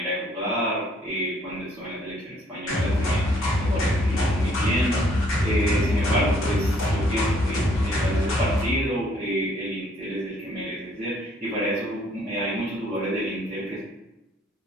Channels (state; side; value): normal; both; correlation 0.64